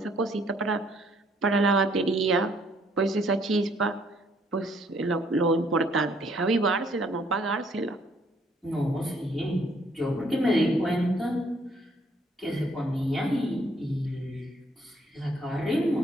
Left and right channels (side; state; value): both; normal; correlation 0.66